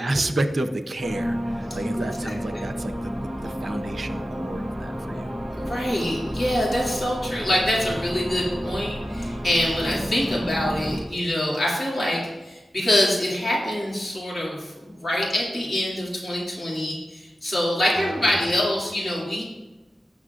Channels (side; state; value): both; normal; correlation 0.93